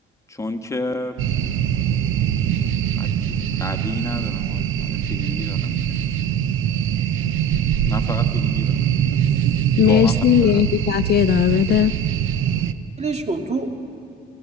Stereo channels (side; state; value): both; normal; correlation 0.33